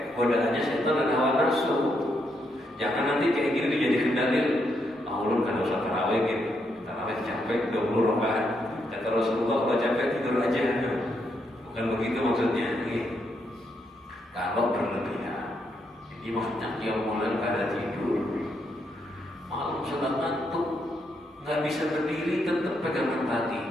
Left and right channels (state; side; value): normal; both; correlation 0.78